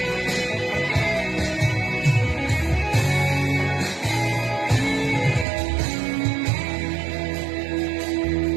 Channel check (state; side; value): drops out; left; at 5.5 s